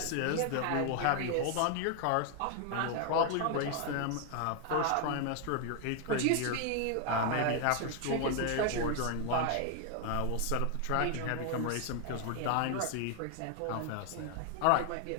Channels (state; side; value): different; both; correlation 0.00